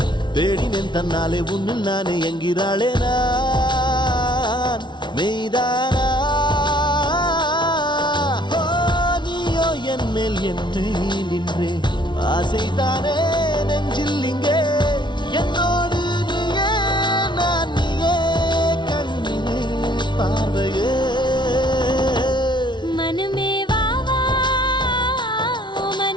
தேடினேன் தன்னாலே உன்னில் நானே என்கிறாளே நான் மெய்தானா என் மேல் என்னை நின்றே ஆசைதானே நெஞ்சில் இங்கே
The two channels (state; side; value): late; right; 0.22 ms